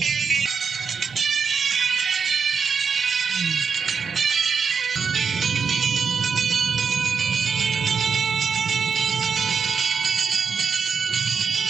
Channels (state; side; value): quieter; left; 5.9 dB